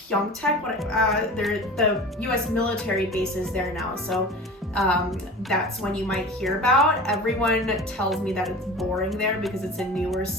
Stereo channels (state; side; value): normal; both; correlation 0.36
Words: the U.S. military base is there now. So that's one you might hear about. Everyone tells me that it's boring there because it's a newer